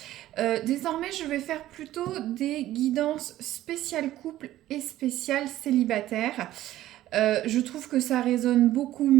Désormais, je vais faire plutôt des guidances spéciales couple et spéciales célibataire. Je trouve que ça résonne beaucoup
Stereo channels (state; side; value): quieter; left; 14.3 dB